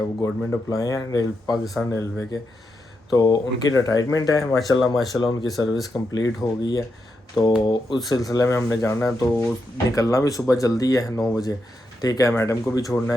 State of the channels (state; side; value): normal; both; correlation 0.84